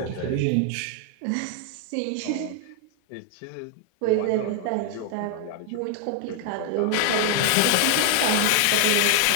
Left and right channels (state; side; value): different; both; correlation 0.00